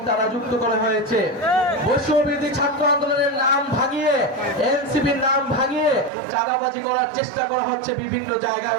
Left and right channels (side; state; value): left; drops out; at 6.1 s